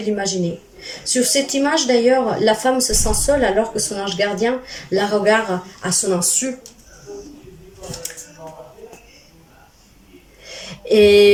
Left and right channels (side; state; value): both; identical; correlation 1.00